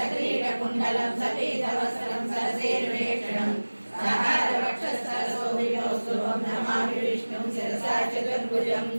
సపీతవస్త్రం సరసేర్వేక్షణం సహారవక్షస్థలశోభితోస్తుభం नमामि विष्णुं शिरसा चतुर्भुजं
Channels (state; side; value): inverted; both; correlation -1.00